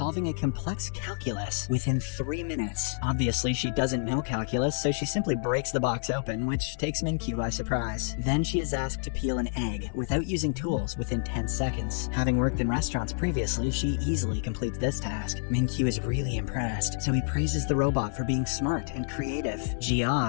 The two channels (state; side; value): silent; right; digital silence